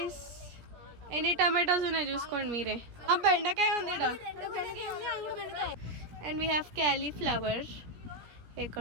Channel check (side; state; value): left; late; 17 ms